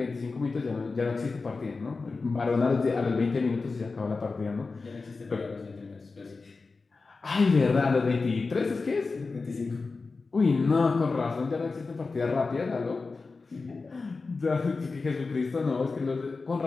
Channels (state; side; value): quieter; right; 4.1 dB